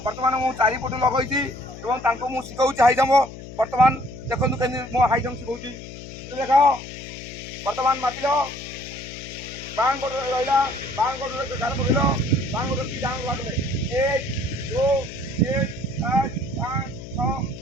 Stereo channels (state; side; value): noise; left; hum, 13 dB below the sound